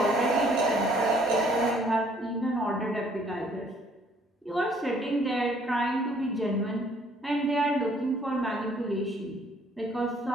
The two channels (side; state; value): both; normal; correlation 0.62